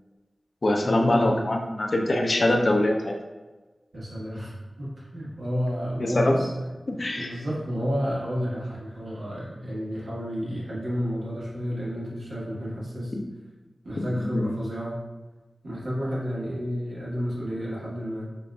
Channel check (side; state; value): both; normal; correlation 0.96